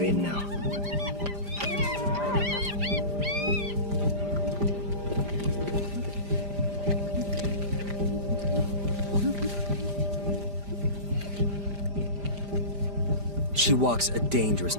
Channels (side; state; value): left; late; 5.0 ms